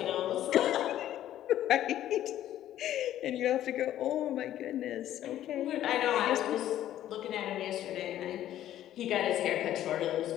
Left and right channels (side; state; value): right; quieter; 12.4 dB